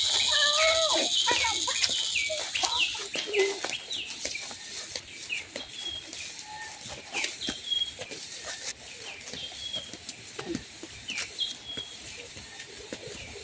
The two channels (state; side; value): identical; both; correlation 1.00